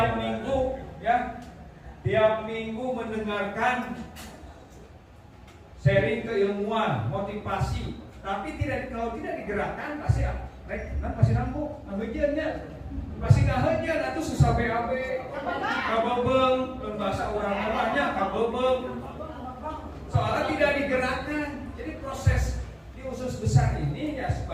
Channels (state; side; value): identical; both; correlation 1.00